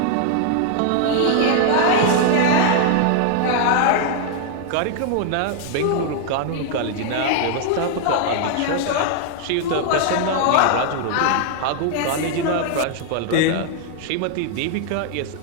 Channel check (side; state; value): both; different; correlation 0.00